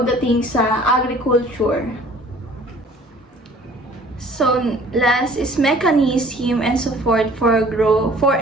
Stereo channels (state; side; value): normal; both; correlation 0.51